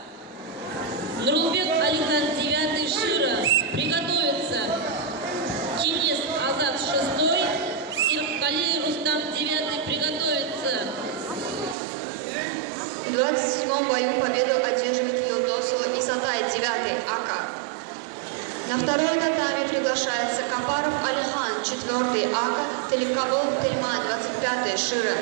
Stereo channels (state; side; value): drops out; left; at 11.8 s